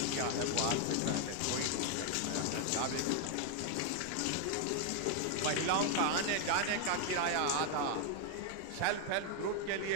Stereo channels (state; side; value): different; both; correlation 0.00